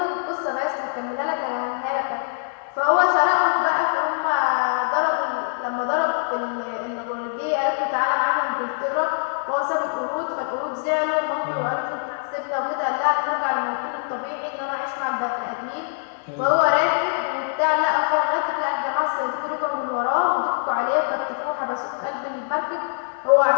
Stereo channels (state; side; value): silent; right; digital silence